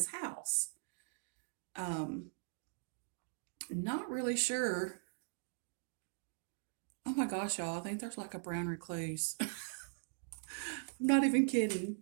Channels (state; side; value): silent; left; digital silence